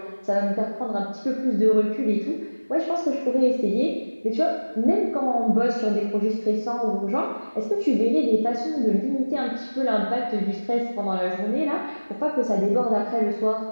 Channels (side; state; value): both; inverted; correlation -1.00